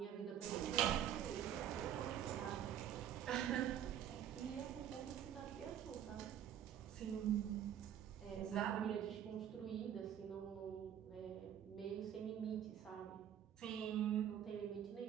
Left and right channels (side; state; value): left; quieter; 10.0 dB